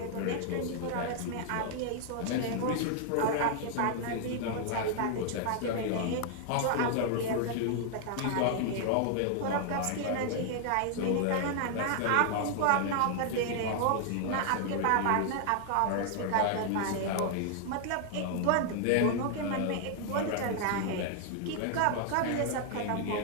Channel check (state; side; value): different; both; correlation 0.00